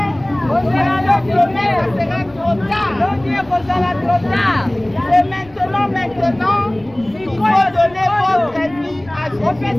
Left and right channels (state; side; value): noise; left; rumble, 25 dB below the sound